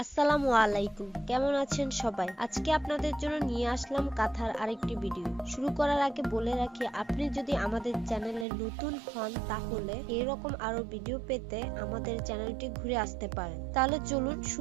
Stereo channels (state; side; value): drops out; left; at 8.5 s